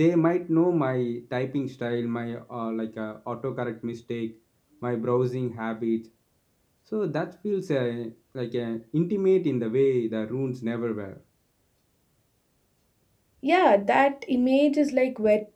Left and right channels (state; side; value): identical; both; correlation 1.00